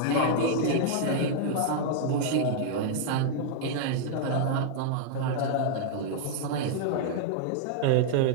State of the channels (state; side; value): different; both; correlation -0.01